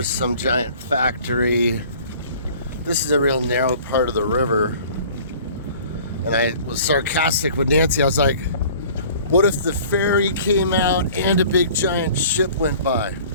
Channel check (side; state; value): both; inverted; correlation -0.48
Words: some giant factory. This is a real narrow part of the river. And I was sarcastic with Nancy. I was like, what if the ferry came out and a big giant ship went by?